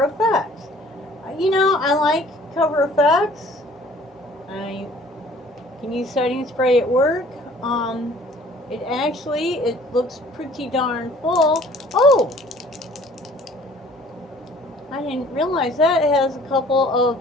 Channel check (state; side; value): normal; both; correlation 0.53